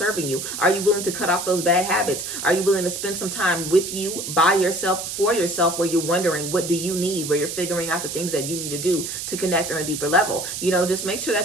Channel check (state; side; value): noise; right; hiss, 6 dB below the sound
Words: you? Are you willing to cut off those bad habits? Are you willing to spend some time with you, by yourself, for yourself? Where you're wondering, what do you need? Where you're figuring out the things that you need to do to connect on a deeper level. Just make sure